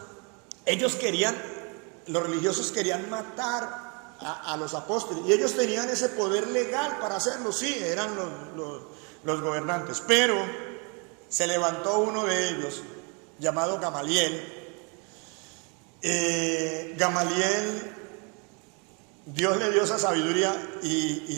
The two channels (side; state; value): left; quieter; 33.9 dB